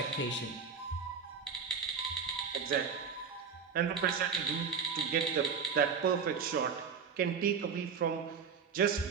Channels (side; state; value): left; quieter; 6.1 dB